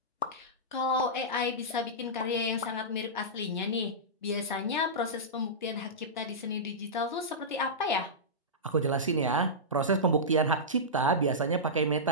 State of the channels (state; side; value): normal; both; correlation -0.14